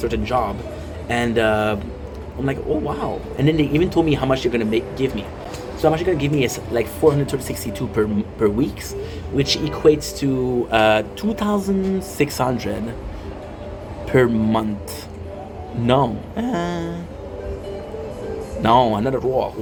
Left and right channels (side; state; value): both; identical; correlation 1.00